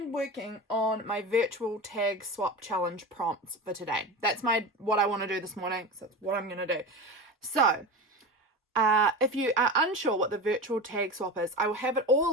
working on my virtual tag swap challenge prompts for today. That's what I want to do this morning, so that's what I'm going to do. So, if you are unsure what the virtual tag swap is, I will have it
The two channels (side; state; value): both; normal; correlation 0.26